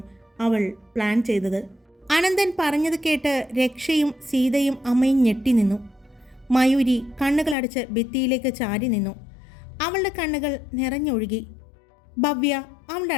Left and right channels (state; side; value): drops out; right; at 7.6 s